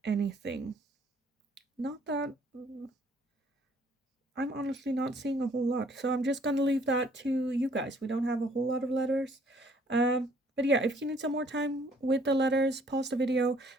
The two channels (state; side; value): normal; both; correlation 0.61